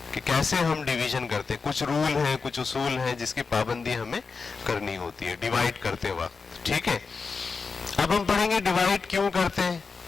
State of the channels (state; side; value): quieter; right; 4.8 dB